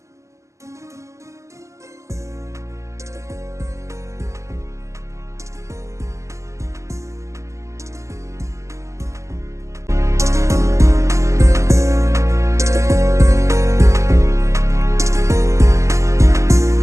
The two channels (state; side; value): late; left; 0.14 ms